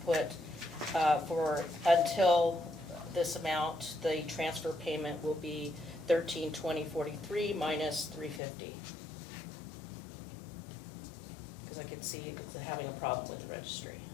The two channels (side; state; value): right; drops out; at 8.4 s